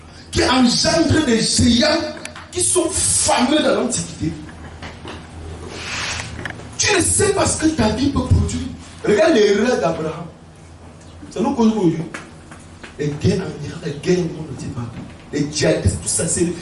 qui engendre des géants qui sont fameux dans l'Antiquité. Tu ne sais pas ce que ta vie peut produire. Regarde l'erreur d'Abraham. Ça nous cause aujourd'hui. Les guerres en Iran, les guerres au monde, ne dit pas. Les djihadistes, tout ça,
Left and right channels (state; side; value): identical; both; correlation 1.00